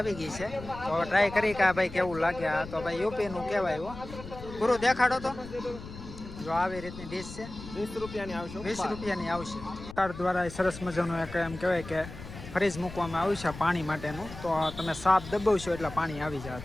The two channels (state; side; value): noise; left; rumble, 13 dB below the sound